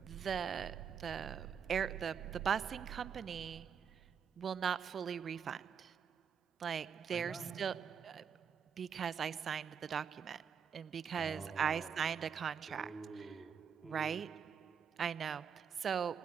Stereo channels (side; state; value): left; quieter; 7.1 dB